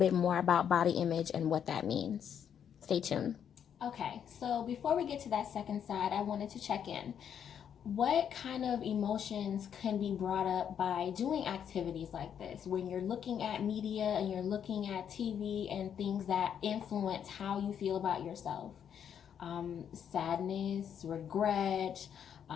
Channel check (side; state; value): right; quieter; 8.5 dB